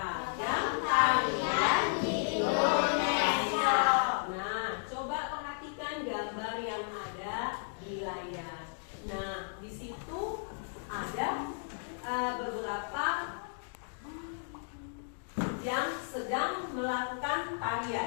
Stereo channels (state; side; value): silent; right; digital silence